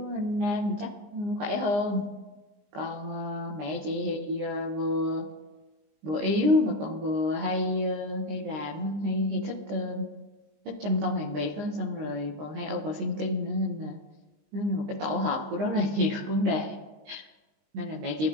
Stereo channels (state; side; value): late; left; 19 ms